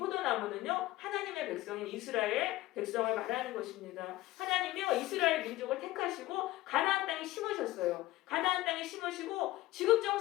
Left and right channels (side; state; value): right; quieter; 17.3 dB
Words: 하나님의 백성인 이스라엘 백성을 말하는 것입니다. 하나님이요, 이스라엘 민족을 택하시고 가나안 땅에 심으셨어요. 가나안 땅에 심으시고